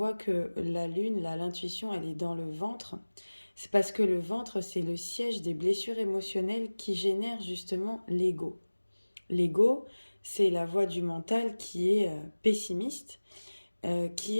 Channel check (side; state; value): both; inverted; correlation -1.00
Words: que la lune, l'intuition, elle est dans le ventre? C'est parce que le ventre, c'est le siège des blessures émotionnelles qui génèrent justement l'ego. L'ego, c'est la voie du mental qui est pessimiste, qui